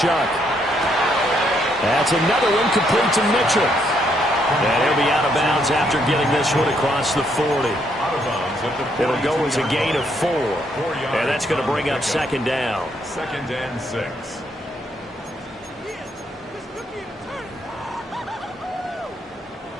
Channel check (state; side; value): normal; both; correlation 0.73